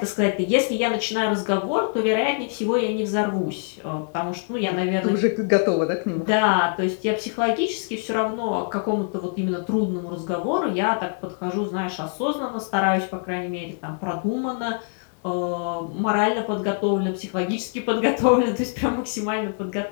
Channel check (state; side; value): silent; right; 63 dB below the other